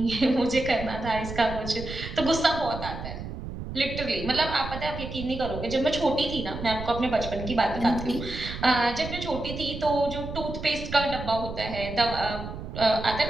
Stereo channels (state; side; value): noise; right; rumble, 9 dB below the sound